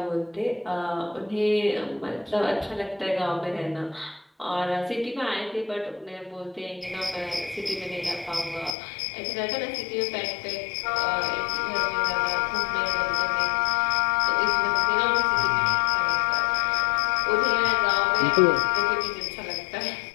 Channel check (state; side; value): drops out; right; at 8.8 s